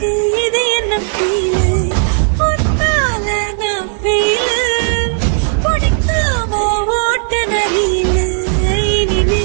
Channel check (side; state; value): left; silent; digital silence